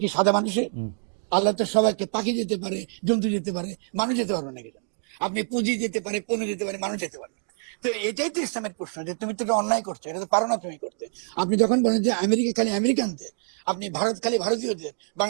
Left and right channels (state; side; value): silent; left; digital silence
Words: কি সাদা মানুষের? আল্লাহ তো সবাইকে, পাখি যেতে পারে, জন্তু যেতে পারে, মানুষ যেতে পারবে না। কেন? আপনি পুঁজি যেতে পারে, পণু যেতে পারে, মানুষ যেতে পারে। তো এটাই তো ইসলামের প্রশ্ন যে তুমি তো অন্যায় করছো, পারো না তুমি করতে। আপনি যখন বলেন যে আমেরিকা খালি আমেরিকানদের, আপনি ভারত খালি ভারতীয়দের,